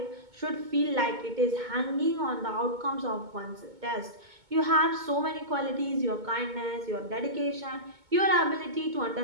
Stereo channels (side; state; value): left; late; 2.2 ms